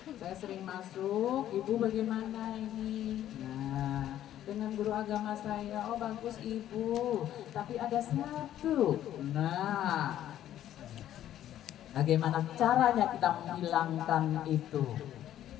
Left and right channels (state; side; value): quieter; right; 11.9 dB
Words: saya sering masuk, ibu bagaimana ini? Nah, dengan guru agama saya, oh bagus ibu, tapi ada satu. Nah, bagaimana caranya kita menghilangkan itu?